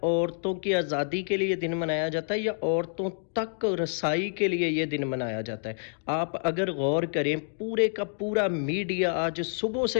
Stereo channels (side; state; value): right; silent; digital silence